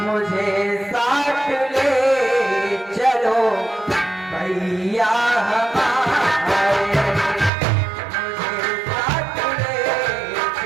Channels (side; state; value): left; drops out; at 7.5 s